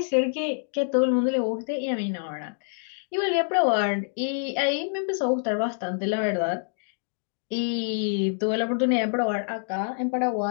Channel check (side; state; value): right; silent; digital silence